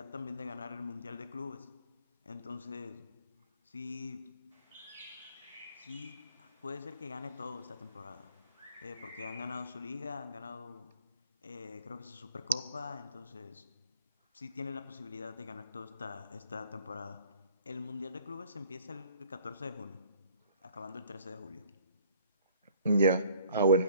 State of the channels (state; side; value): inverted; both; correlation -0.55